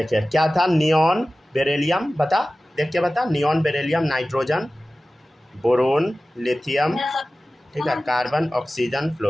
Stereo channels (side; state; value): both; normal; correlation 0.96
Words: क्या था? नियॉन बेरिलियम, बता, देख के बता। Neon beryllium, nitrogen, boron, lithium, ठीक है, कार्बन, ऑक्सीजन,